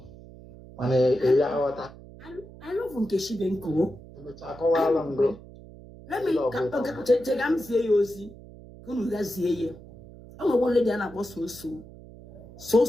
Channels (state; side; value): noise; right; hum, 18 dB below the sound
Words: mana ya ghọta I love Nkechi Benko emecha akọwala ngo. Let me check am see you ozi unu ga zie ye o nwe lady na akpọ